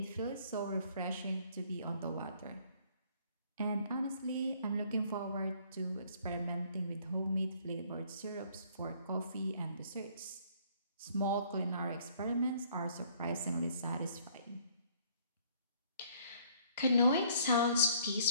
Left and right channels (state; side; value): inverted; both; correlation -0.60